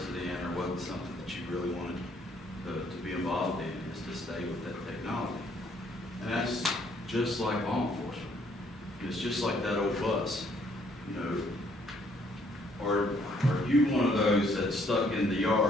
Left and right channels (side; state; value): both; normal; correlation 0.66